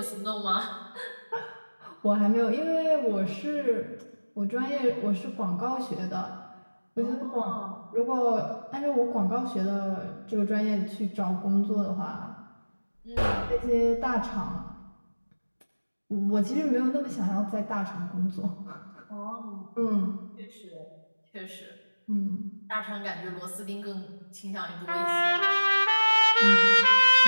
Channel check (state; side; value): inverted; both; correlation -1.00